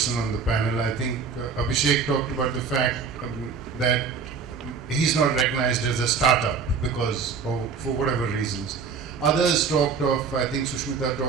on the panel. I think Abhishek talked about the fact that he's not recognized as a startup because of, for whatever reasons. Others talked of, I think Sushmita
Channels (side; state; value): left; quieter; 5.6 dB